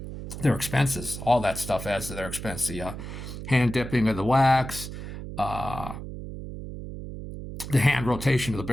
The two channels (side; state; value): right; noise; hum, 9 dB below the sound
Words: Their expenses, all that stuff adds to their expense. The hand dipping of the wax, the hand rotation of the